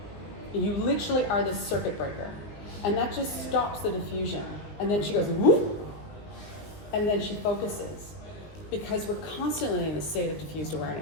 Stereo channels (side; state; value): right; late; 19 ms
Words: you literally are the circuit breaker. And that just stops the diffusion. And then she goes, whoop, and then she focuses. Because we're constantly in a state of diffused